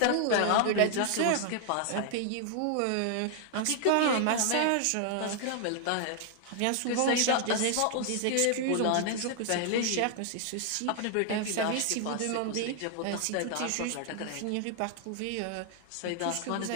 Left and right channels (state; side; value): different; both; correlation 0.00